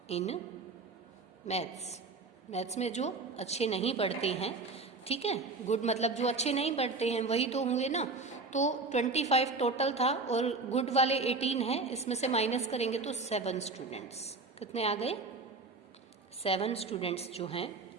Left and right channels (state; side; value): quieter; left; 3.8 dB